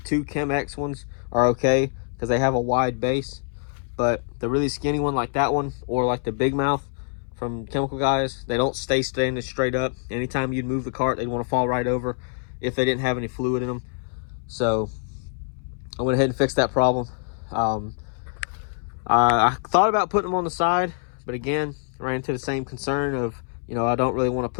2 Chemex ones are okay because they have a wide base. But the really skinny one like that one, or like the Big Mouth from Chemical Guys, they don't stay standing straight up. Anytime you'd move the cart, they'd want to fall right over if they didn't have any fluid in them. So I went ahead and fixed that problem. I thought about putting them on the side, but again, ran into the same concern of, you know, I don't really want to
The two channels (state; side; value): silent; right; 62 dB below the other